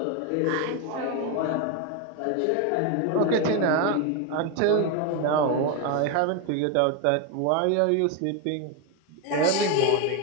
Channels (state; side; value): different; both; correlation 0.02